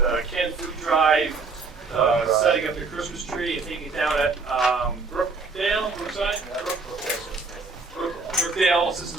canned food drive, setting up the Christmas tree and taking it down at Brookdale.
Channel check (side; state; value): left; quieter; 4.2 dB